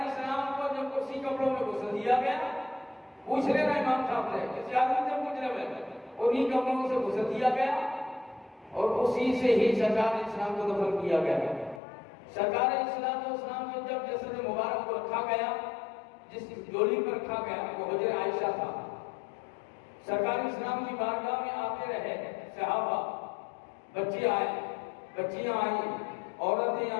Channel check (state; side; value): drops out; right; at 11.8 s